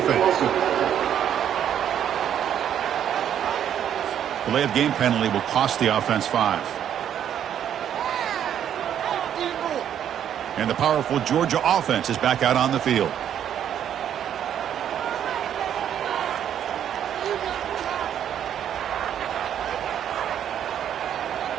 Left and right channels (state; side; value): quieter; left; 9.7 dB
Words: Delay of game penalty will cost the offense 5. And the powerful Georgia offense is back out on the field.